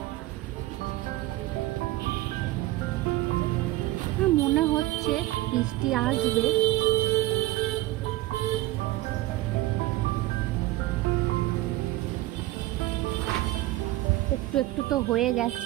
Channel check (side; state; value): left; quieter; 17.1 dB